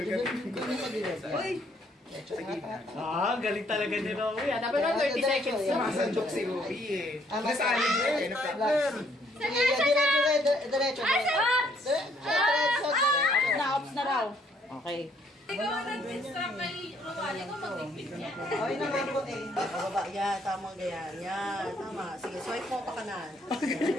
Gilid sa gilid. Uy! Galing talaga ni Rowie. Dapat na 30 seconds na. Masandok si Rowie eh. Nasali niya eh. Sige, diretso. Diretso. Ops na raw. Okay. Ikaw ang nag-instruct kay Ruwali ko mag-bigpit niya. Okay naman po eh. Bababa, yan, tama ganyan. Yan, tama. Sige, swipe mo pa kanan.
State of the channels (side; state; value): both; normal; correlation 0.67